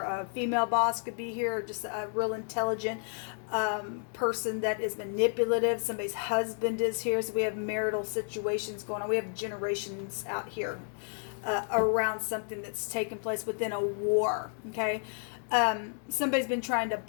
female boss could be here, or just a real intelligent person that is manipulative. Somebody's husband is here, so we have marital situations going on. We have generations out here around something that's taken place within a war. Okay. Somebody's been trying to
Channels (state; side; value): silent; right; 57 dB below the other